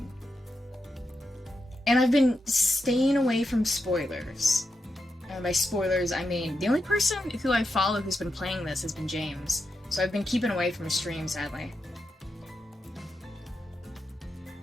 And I've been staying away from spoilers. And by spoilers, I mean, the only person who I follow who's been playing this has been James. So I've been keeping away from his stream, sadly.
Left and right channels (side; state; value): both; normal; correlation 0.86